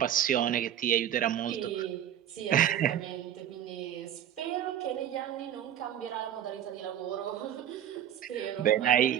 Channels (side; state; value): left; quieter; 10.5 dB